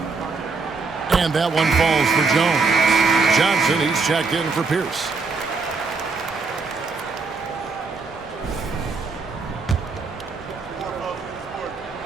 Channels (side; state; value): left; quieter; 4.2 dB